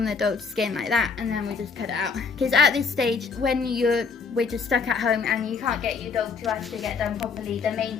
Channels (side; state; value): right; quieter; 5.3 dB